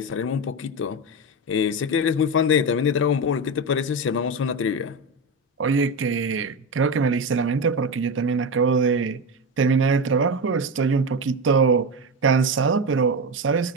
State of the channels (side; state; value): both; normal; correlation 0.18